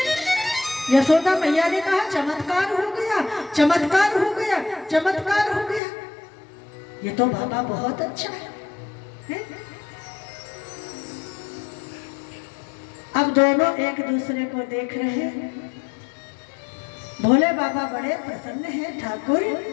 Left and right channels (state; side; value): drops out; right; at 5.8 s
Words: यशोदा मैया ने कहा चमत्कार हो गया, चमत्कार हो गया, चमत्कार हो गया। ये तो बाबा बहुत अच्छा है। अब दोनों एक दूसरे को देख रहे हैं। भोले बाबा बड़े प्रसन्न हैं। ठाकुर